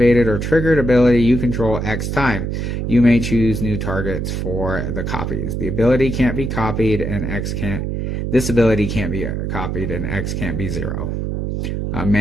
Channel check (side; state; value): right; noise; hum, 2 dB below the sound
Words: or triggered ability you control X time. You may choose new targets for the copies. The ability can't be copied, and this ability can't be copied, and X can't be 0.